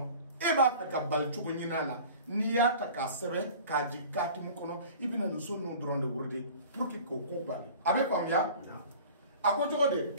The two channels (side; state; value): both; inverted; correlation -0.42